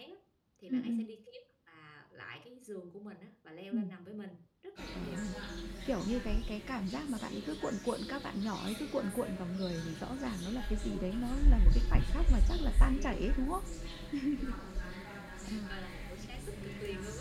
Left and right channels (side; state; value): both; identical; correlation 1.00